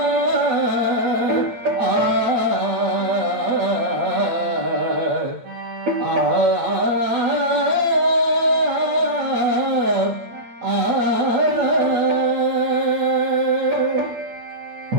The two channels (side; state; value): left; late; 8.7 ms